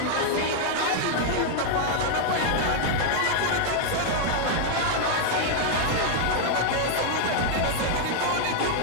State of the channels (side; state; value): both; different; correlation 0.00